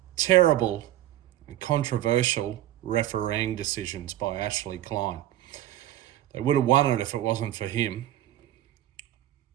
terrible and controversial refereeing decisions by Ashley Klein. They would have won it if it wasn't for him.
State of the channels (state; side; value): quieter; left; 13.7 dB